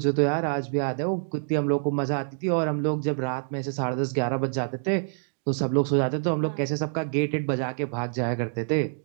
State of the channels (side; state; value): left; silent; digital silence